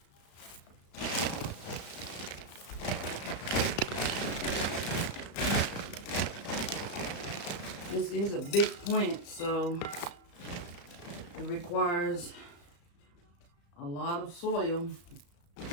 This is a big plant, so it requires a lot of soil.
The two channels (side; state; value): right; late; 35 ms